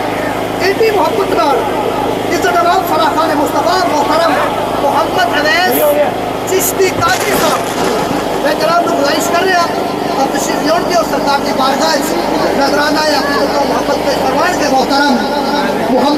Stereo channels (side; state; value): both; identical; correlation 1.00